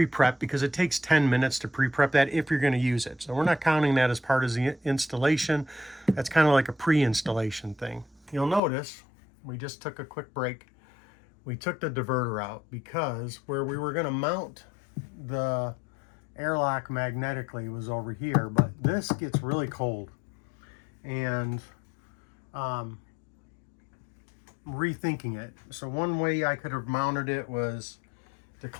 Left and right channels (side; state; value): right; drops out; at 8.6 s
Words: because it takes 10 minutes to pre-prep that if you're going to use it. So we're not counting that as part of the installation. That's kind of like a pre-installation thing. You'll notice we just took a quick break. We took the diverter out because where we were going to mount the AIRLOCK magnetically was over here, but this gets really cold, and rethinking it. So one way I could have mounted it was to